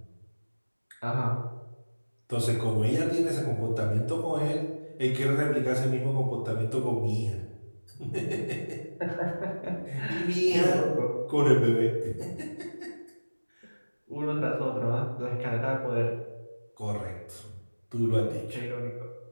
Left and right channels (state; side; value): inverted; both; correlation -1.00